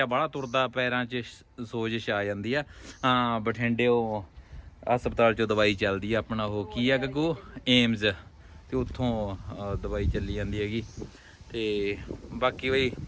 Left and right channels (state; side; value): identical; both; correlation 1.00